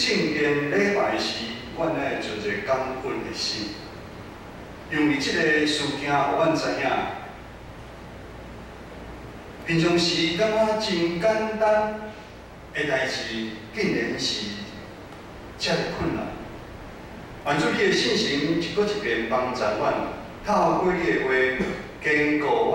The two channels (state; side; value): identical; both; correlation 1.00